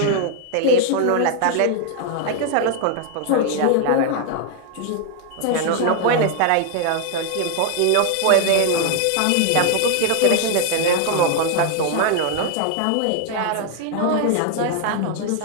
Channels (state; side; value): different; both; correlation 0.00